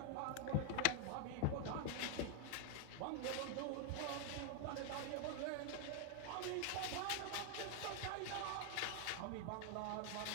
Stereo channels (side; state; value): both; different; correlation 0.00